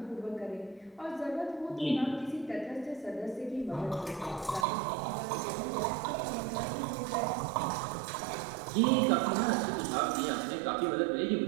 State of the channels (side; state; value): left; drops out; at 4.7 s